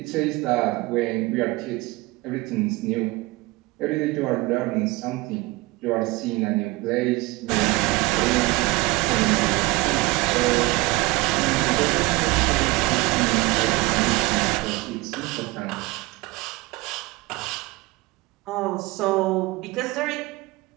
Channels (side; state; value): left; quieter; 22.5 dB